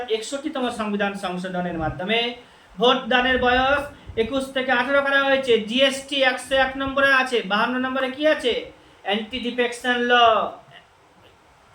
61তম সংবিধান সংশোধনের মাধ্যমে ভোট দানের বয়স 21 থেকে 18 করা হয়েছে। জিএসটি 101 নম্বরে আছে, 52 নম্বরে কি আছে? অ্যান্টি ডিফেকশন ল,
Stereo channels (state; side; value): identical; both; correlation 1.00